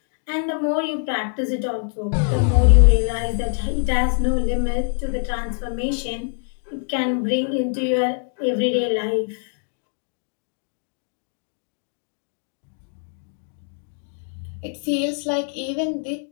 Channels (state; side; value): silent; right; digital silence